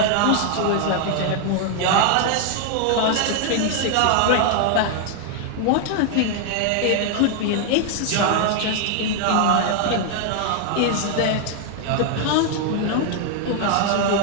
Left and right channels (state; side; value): different; both; correlation 0.00